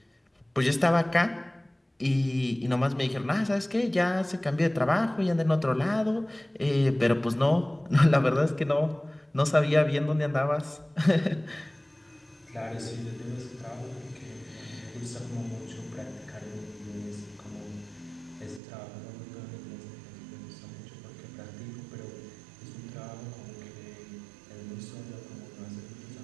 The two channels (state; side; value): drops out; left; at 18.6 s